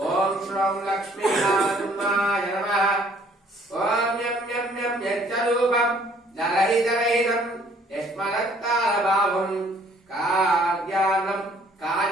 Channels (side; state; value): both; normal; correlation 0.60